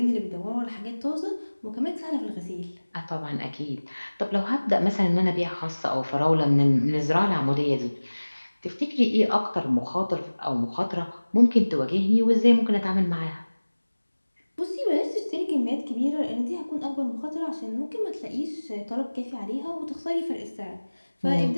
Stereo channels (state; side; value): inverted; both; correlation -1.00